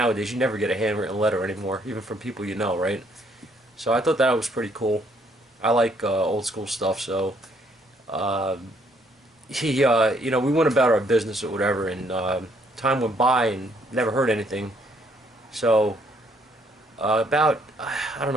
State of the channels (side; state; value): both; normal; correlation 0.68